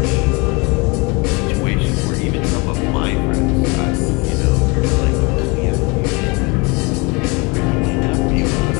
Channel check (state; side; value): quieter; right; 27.5 dB